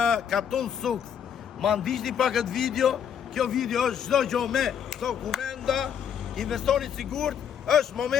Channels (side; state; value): right; quieter; 8.4 dB